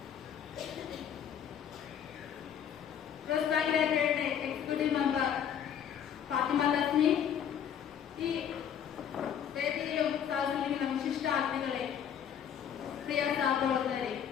press bank executive member Fathima Thasmi, ഈ വേദിയിലും സാഹചര്യങ്ങളും വിശിഷ്ട അതിഥികളെ, പ്രിയ സഹപ്രവർത്തകരെ,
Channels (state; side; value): quieter; right; 8.8 dB